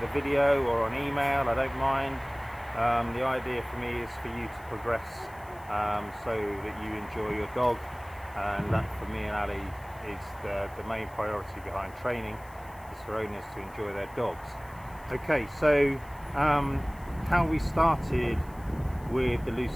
video or on email. I don't mind. The idea for me is for you to progress so that you enjoy your dog, and that for me and Ali is the main priority behind training, is for owners to enjoy their dogs. Okay, so how we started with the loose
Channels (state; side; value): noise; left; hiss, 25 dB below the sound